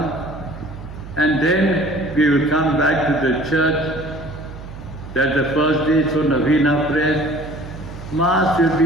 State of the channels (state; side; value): noise; right; hum, 13 dB below the sound